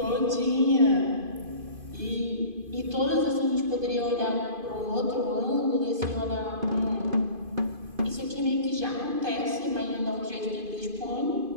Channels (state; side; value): late; left; 2.5 ms